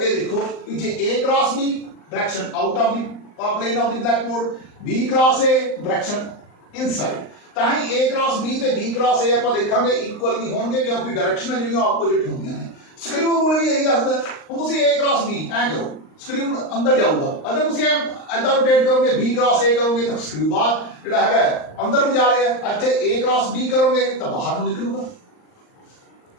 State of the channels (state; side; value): late; right; 39 ms